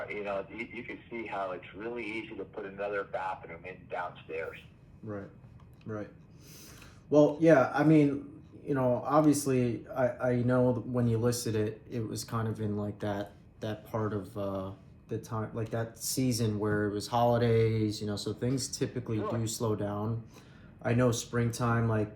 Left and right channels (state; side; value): identical; both; correlation 1.00